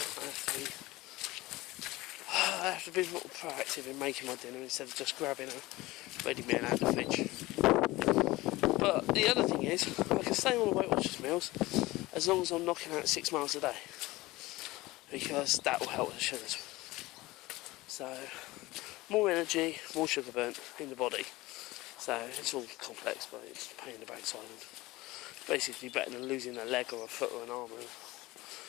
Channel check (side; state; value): right; quieter; 19.5 dB